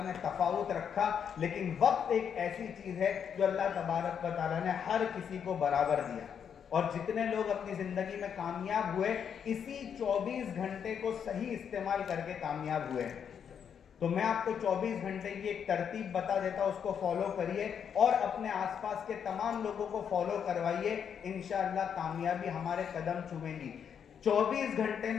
ने तफावुत रखा, लेकिन वक्त एक ऐसी चीज है जो अल्लाह तबारक व ताला ने हर किसी को बराबर दिया। और जितने लोग अपनी जिंदगी में कामयाब हुए, इसी 24 घंटे को सही इस्तेमाल करके कामयाब हुए। तो मैं आपको 24 घंटे की एक तरतीब बता देता हूं, उसको फॉलो करिए और अपने आसपास के तमाम लोगों को फॉलो करवाइए। इंशाअल्लाह कामयाबी हमारे कदम चूमेगी। 24 घंटे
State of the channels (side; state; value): right; quieter; 7.7 dB